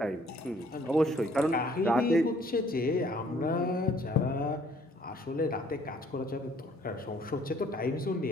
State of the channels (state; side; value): normal; both; correlation 0.61